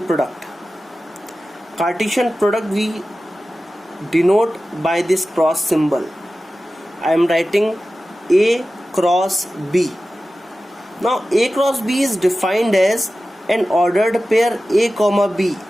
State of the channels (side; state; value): both; normal; correlation 0.95